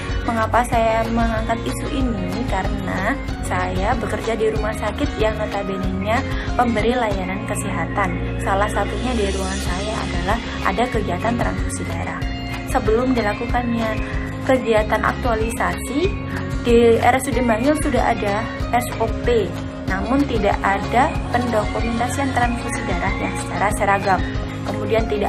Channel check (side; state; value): both; identical; correlation 1.00